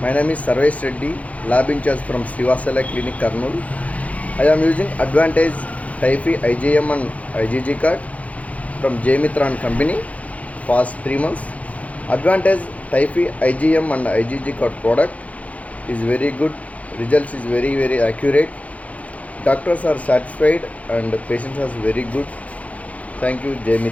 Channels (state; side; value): late; right; 0.068 ms